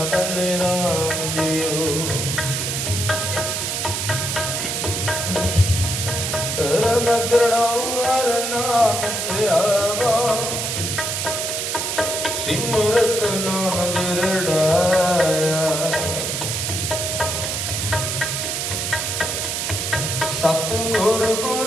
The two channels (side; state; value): right; noise; hiss, 1 dB below the sound